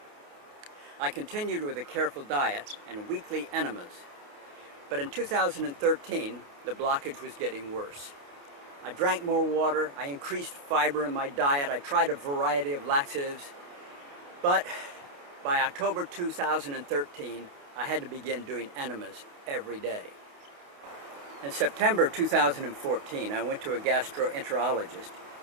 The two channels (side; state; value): left; late; 29 ms